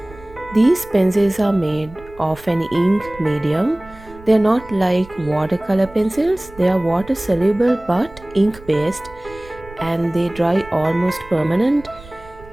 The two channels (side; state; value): right; noise; rumble, 20 dB below the sound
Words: These pencils are made of an ink medium. They are not like watercolor pencils, they are water soluble but ink based, and they dry almost permanent.